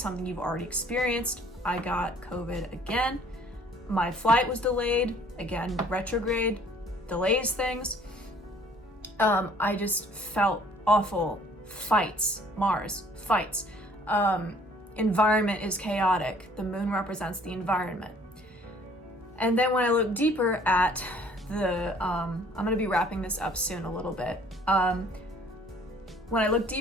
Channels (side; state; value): both; normal; correlation 0.56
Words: you've already experienced. I got COVID again. My flight was delayed. Again, retrograde delays things. I just felt awful. Fights, Mars, fights. Environment is chaotic. The moon represents the environment. And then when I look deeper at the, I'm gonna be wrapping this up soon a little bit. When I look